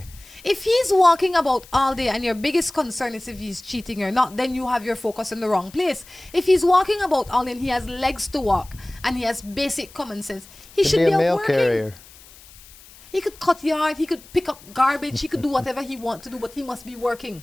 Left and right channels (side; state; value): left; noise; hiss, 22 dB below the sound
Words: If he's walking about all day and your biggest concern is if he's cheating or not, then you have your focus in the wrong place. If he's walking about all day and he has legs to walk and he has basic common sense, he should be a out mail working. carrier. He could cut yard, he could pick up garbage, he could do whatever he wants to do, but he must be working.